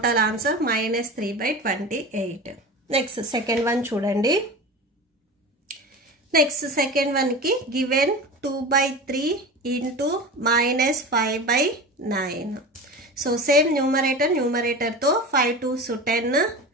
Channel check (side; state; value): both; normal; correlation 0.31